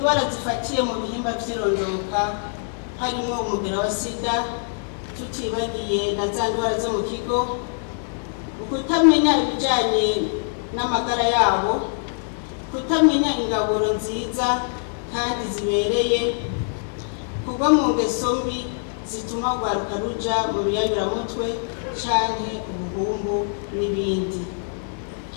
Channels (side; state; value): right; silent; digital silence